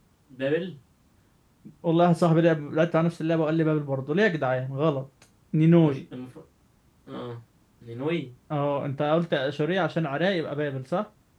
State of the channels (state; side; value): identical; both; correlation 1.00